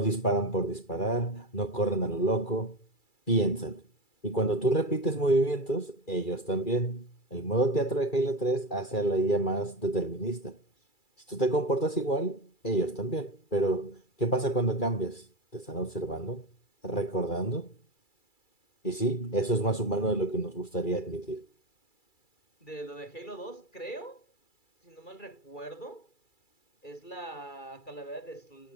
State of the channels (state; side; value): late; right; 2.3 ms